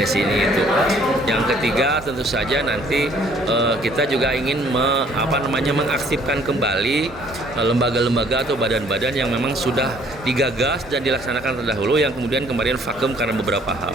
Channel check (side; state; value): both; normal; correlation 0.59